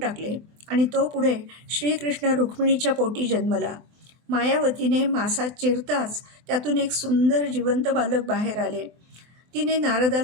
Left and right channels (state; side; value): late; left; 24 ms